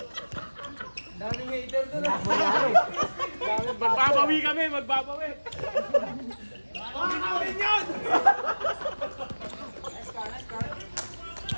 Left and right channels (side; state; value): both; inverted; correlation -1.00